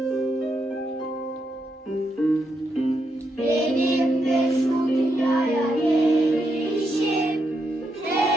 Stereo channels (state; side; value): normal; both; correlation 0.81